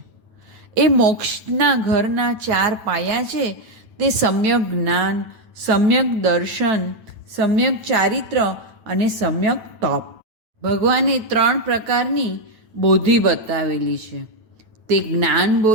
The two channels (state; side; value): late; left; 9.1 ms